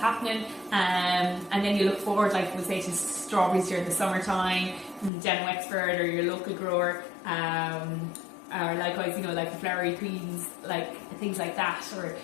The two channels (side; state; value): right; drops out; at 5.1 s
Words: And then you look forward, like we say, to strawberries during the summertime, down in Wexford or your local grower. Or likewise, you know, like the flowery greens, like things like that, or